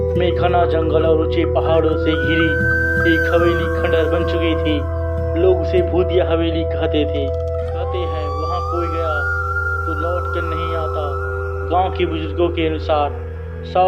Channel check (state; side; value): identical; both; correlation 1.00